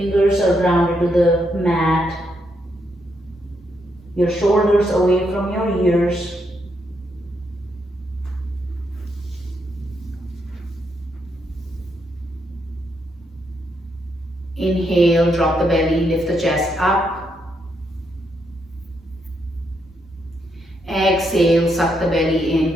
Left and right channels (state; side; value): normal; both; correlation 0.78